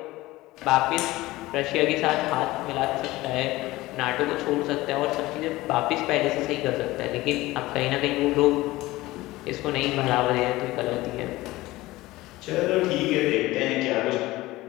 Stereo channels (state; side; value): quieter; right; 18.6 dB